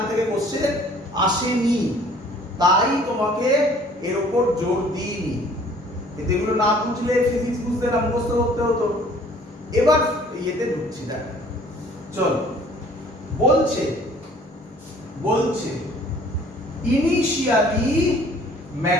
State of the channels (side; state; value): both; normal; correlation 0.55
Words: থেকে কোশ্চেন আসেনি, তাই তোমাকে এর উপর জোর দিইনি। এগুলো না বুঝলে ফিজিক্স বুঝতে না, মুখস্থ করতে হতো। এবার ইয়েতে ঢুকছি। দেখ, চল, বলছে ইনিশিয়ালি